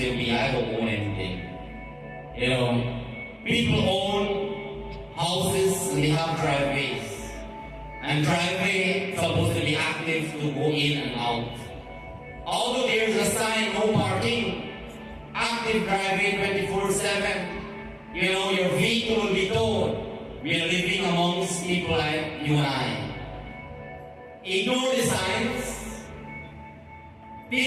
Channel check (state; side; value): identical; both; correlation 1.00